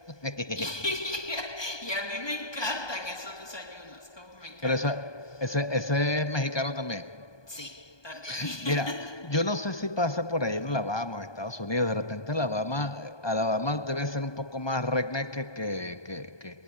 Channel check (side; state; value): right; late; 1.2 ms